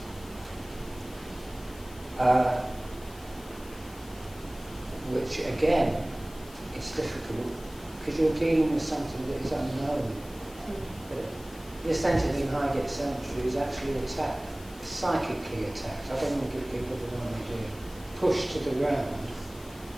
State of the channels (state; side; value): noise; left; hiss, 20 dB below the sound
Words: Which again is difficult because you're dealing with something that is unknown. But this entity in Highgate Cemetery is actually attacked, psychically attacked. I don't want to give people the wrong idea. Pushed to the ground.